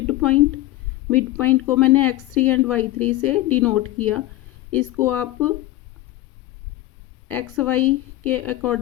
point. मिड पॉइंट को मैंने x3 एंड y3 से डिनोट किया। इसको आप एक्स वाई के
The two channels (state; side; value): quieter; right; 16.2 dB